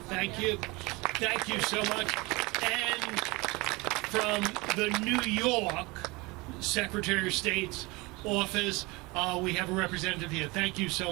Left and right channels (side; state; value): left; quieter; 24.3 dB